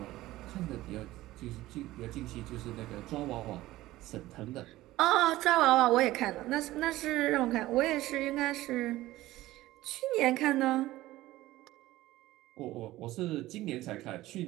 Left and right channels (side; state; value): left; quieter; 16.7 dB